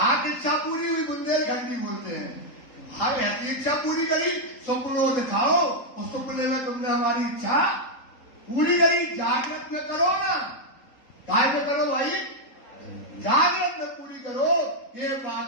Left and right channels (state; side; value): late; right; 3.8 ms